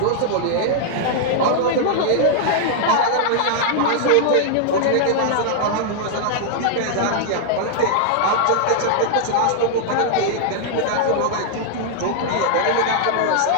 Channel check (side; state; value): both; different; correlation -0.01